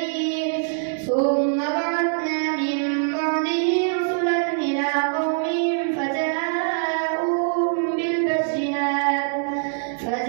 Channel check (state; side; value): silent; left; digital silence